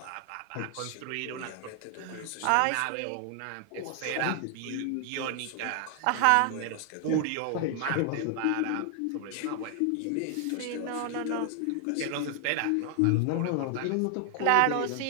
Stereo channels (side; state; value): both; different; correlation 0.00